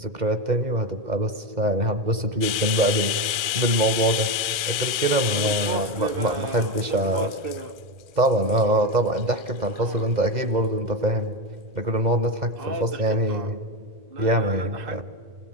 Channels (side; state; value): left; late; 1.4 ms